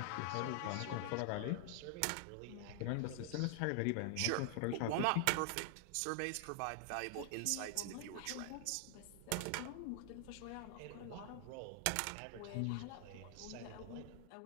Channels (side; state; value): both; different; correlation 0.00